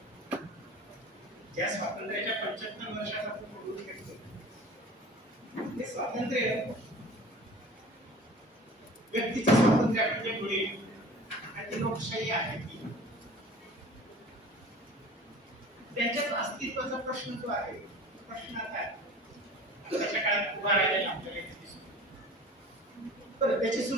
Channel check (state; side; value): normal; both; correlation 0.42